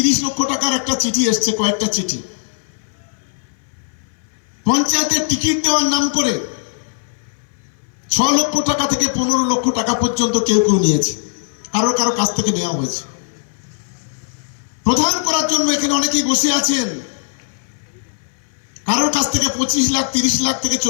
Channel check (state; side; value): silent; right; 63 dB below the other